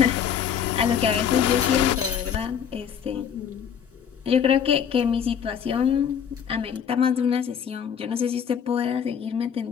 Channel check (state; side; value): quieter; right; 8.0 dB